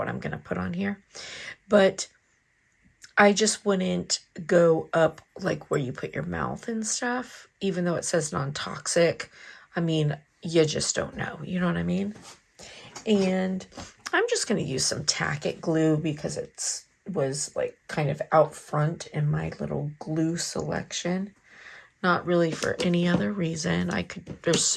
I'm gonna put on here. But I just wouldn't go up like where you put your mouth and stuff, even though it says non-toxic. I mean, you just don't know, you know what I mean? And I'm just going to use some Tack-It glue because it was like kind of out front in my little glue selection. Not really for any other reason. There's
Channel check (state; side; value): identical; both; correlation 1.00